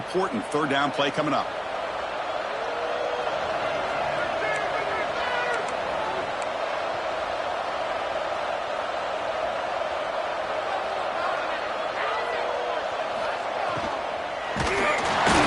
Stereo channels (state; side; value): identical; both; correlation 1.00